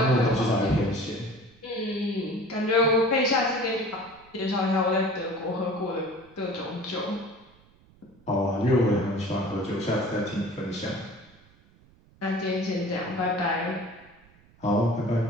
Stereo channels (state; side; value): noise; right; rumble, 28 dB below the sound